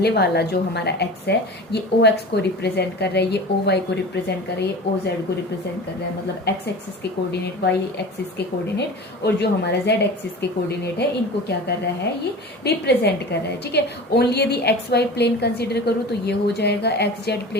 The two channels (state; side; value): normal; both; correlation 0.35